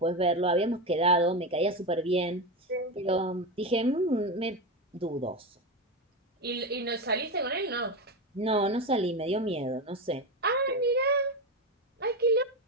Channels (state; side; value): normal; both; correlation 0.16